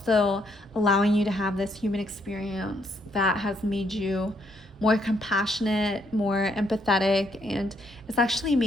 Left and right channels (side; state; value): both; normal; correlation 0.72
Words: allowing you to have this human experience that has made you more compassionate, more empathetic, and it's actually